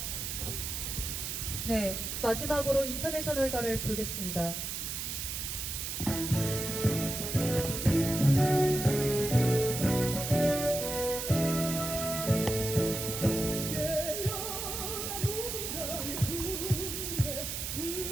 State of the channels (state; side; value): noise; right; hiss, 4 dB below the sound